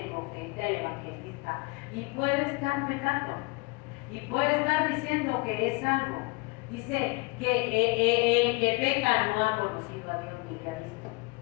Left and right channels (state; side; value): quieter; right; 27.5 dB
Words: el profeta, el evangelista, y puede estar pecando. Y puede estar diciendo que es algo. Dice que el que peca no ha conocido a Dios ni le ha visto.